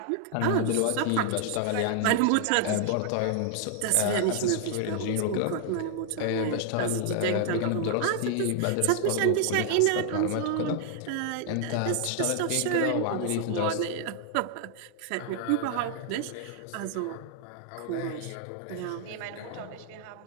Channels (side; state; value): both; different; correlation 0.00